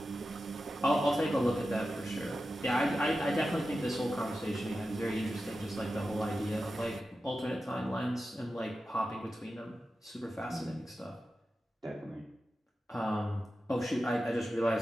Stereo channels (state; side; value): normal; both; correlation 0.92